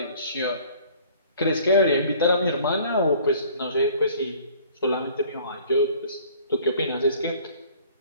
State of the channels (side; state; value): both; inverted; correlation -0.52